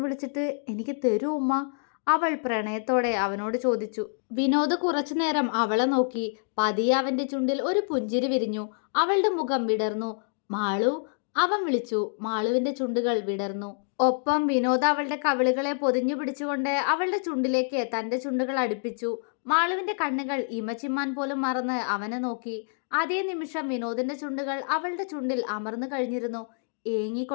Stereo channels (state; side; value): silent; right; digital silence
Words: വിളിച്ചിട്ട് എനിക്ക് തരൂ ഉമ്മ? അവൾ പ്രണയത്തോടെ അവനോട് ചോദിച്ചു. വിനോദ് കുറച്ചു നേരം അവളെ നോക്കി. പതിയെ അവന്റെ ചുണ്ടിൽ ഒരു പുഞ്ചിരി വിരിഞ്ഞു. അവളുടെ മുഖം വിടർന്നു. മാളു, അവൻ വിളിച്ചു. മാളുവിന്റെ ചുണ്ടുകൾ വിടർന്നു. ഒപ്പം വിനോദ് അവളുടെ കവിളുകളെ പൊതിഞ്ഞു പിടിച്ചുകൊണ്ട് അവളുടെ ചുണ്ടിലേക്ക് തന്റെ ചുണ്ടുകൾ അടുപ്പിച്ചു. മാളുവിന്റെ കണ്ണുകൾ ഇമച്ചിമ്മാൻ പോലും മറന്ന് അവനെ നോക്കി. അതേ നിമിഷം വിനോദിന്റെ ചുണ്ടുകൾ അവളുടെ ചുണ്ടിൽ അമർന്നു കഴിഞ്ഞിരുന്നു.